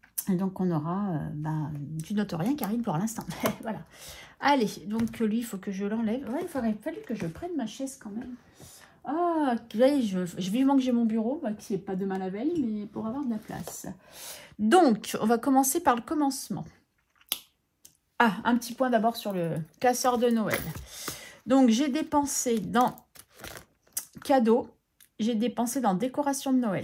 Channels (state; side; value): identical; both; correlation 1.00